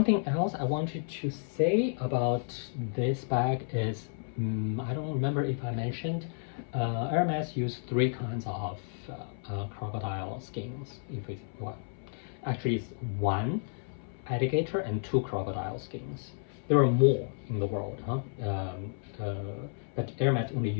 else I wanted to say about this bag is, I don't remember if I mentioned, Hermes used 3 kinds of crocodile skins. If it's well, actually it's 1 alligator and 2 crocodile skins. There are more in the world, but Hermes only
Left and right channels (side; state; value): right; silent; 57 dB below the other